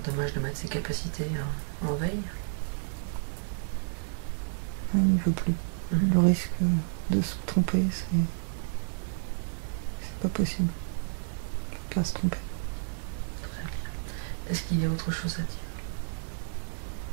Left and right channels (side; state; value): left; silent; digital silence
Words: dommage de mettre ses capacités en veille. Il ne veut plus. Mhm. Le risque de se tromper, c'est pas possible. Il ne faut pas se tromper. Très bien. Est-ce qu'il y a autre chose à dire?